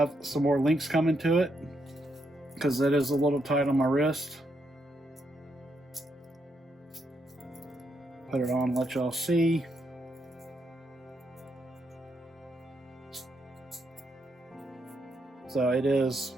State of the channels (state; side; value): normal; both; correlation 0.79